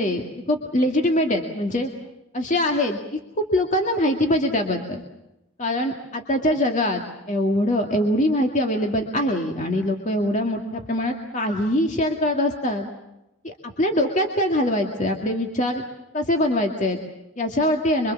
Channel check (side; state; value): both; normal; correlation 0.36